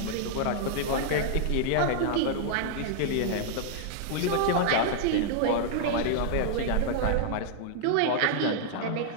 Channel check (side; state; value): both; different; correlation -0.01